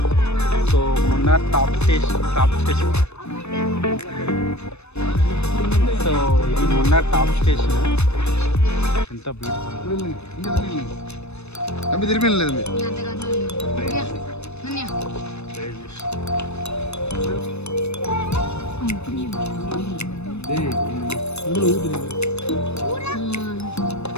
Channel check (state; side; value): late; right; 0.81 ms